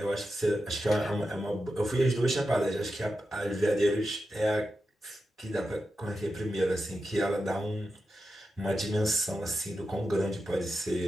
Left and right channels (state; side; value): normal; both; correlation 0.89